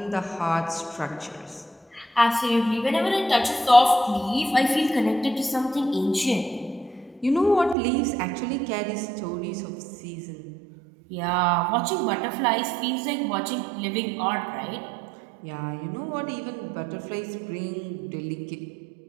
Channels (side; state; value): left; drops out; at 7.8 s